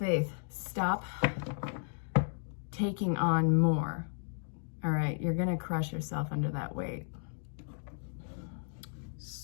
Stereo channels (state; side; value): silent; right; digital silence